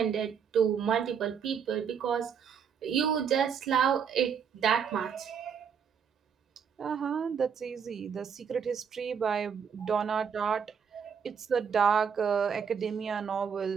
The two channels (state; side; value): quieter; left; 7.0 dB